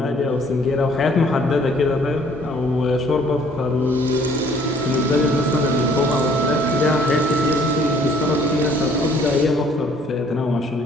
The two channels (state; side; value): normal; both; correlation 0.59